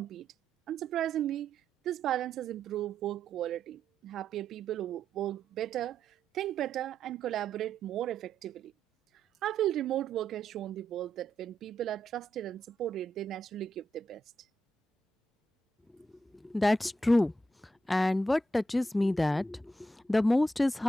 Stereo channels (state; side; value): normal; both; correlation 0.82